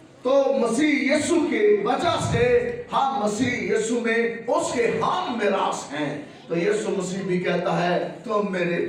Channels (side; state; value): both; identical; correlation 1.00